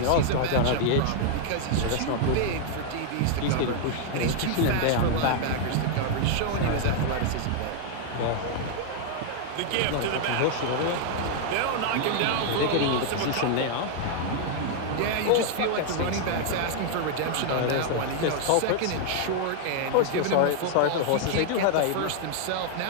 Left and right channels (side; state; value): both; different; correlation 0.00